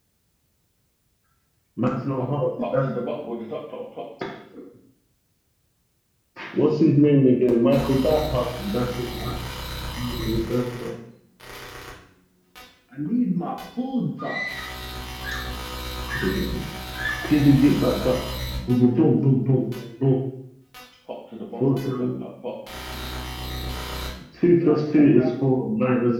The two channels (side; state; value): both; identical; correlation 1.00